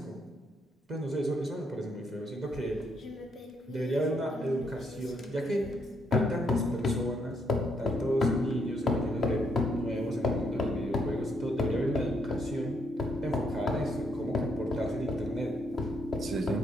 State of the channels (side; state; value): both; normal; correlation 0.74